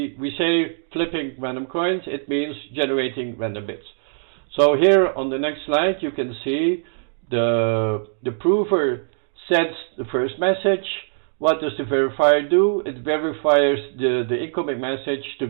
say flipping random coins, it means generating random bits. So here on the next slide, you can see the prover sends the first message. What does the verifier do? It verifies the incoming message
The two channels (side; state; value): left; silent; digital silence